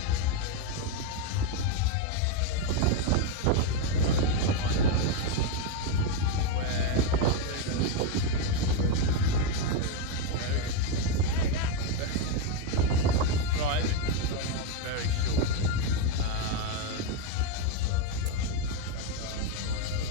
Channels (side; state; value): both; different; correlation 0.03